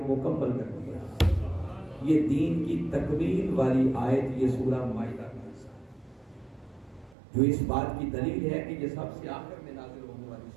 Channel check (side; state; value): left; drops out; at 7.2 s